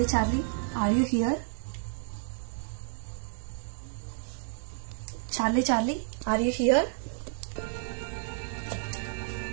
are you here? Charlie are you here?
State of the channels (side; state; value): left; silent; 57 dB below the other